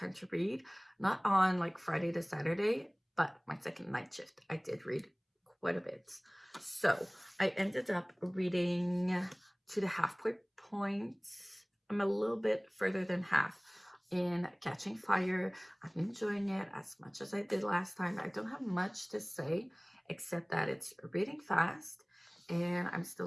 to read. Not on like Friday to Saturday, but my second night shift, I did read quite a bit. So I ended up reading to the halfway point. I'm a little bit further than half in Catching Fire. I'm enjoying it as much as I did last time. I don't have much to say except that it's reading fast, and I'm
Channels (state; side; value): identical; both; correlation 1.00